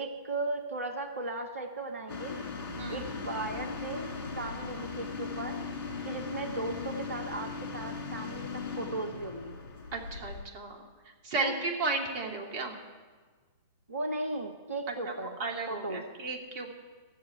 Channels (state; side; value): inverted; both; correlation -0.31